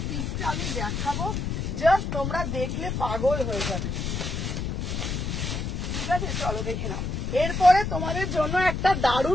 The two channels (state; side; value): noise; left; rumble, 2 dB below the sound